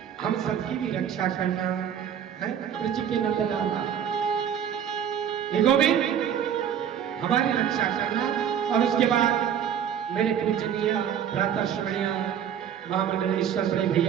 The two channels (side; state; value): left; quieter; 8.9 dB